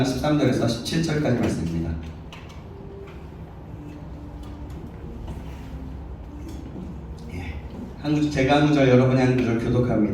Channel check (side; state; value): both; identical; correlation 1.00